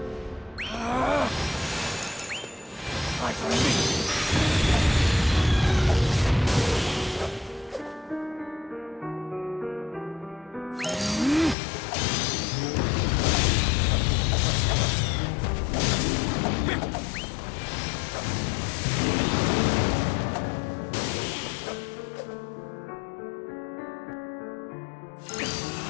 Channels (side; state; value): right; drops out; at 11.6 s